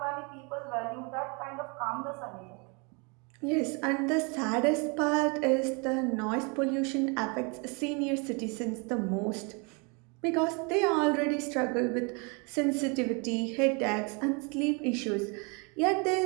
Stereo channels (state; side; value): quieter; left; 32.2 dB